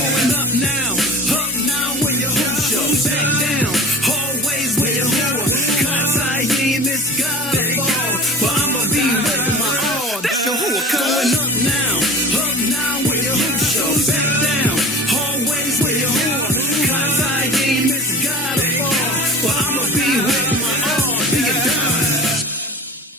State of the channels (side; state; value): both; normal; correlation 0.36